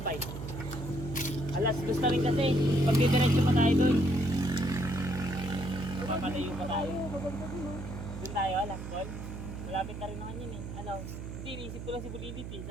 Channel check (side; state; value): right; noise; hum, 9 dB below the sound